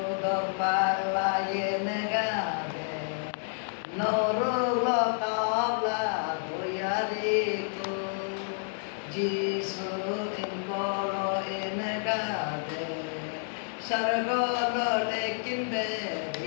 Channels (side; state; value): right; silent; digital silence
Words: palayen gade Norulo kabla doyariku Jisu inkolo enegade Sargolo lekinde